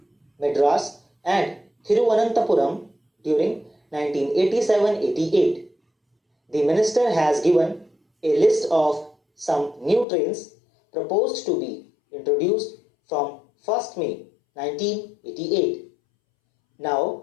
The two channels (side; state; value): right; drops out; at 10.1 s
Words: Madras and Thiruvananthapuram during 1987-88. The minister has given a list of some new trains proposed to be introduced from 1st May 1988.